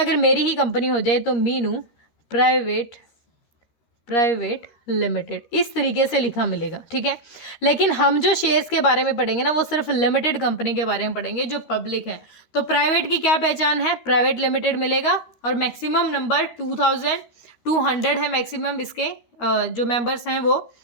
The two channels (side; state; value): right; late; 13 ms